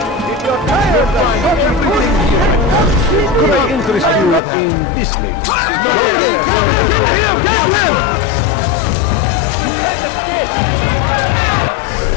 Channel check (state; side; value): drops out; right; at 4.4 s